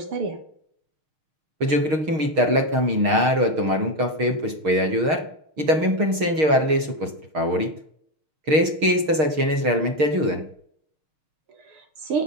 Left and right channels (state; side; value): late; left; 6.5 ms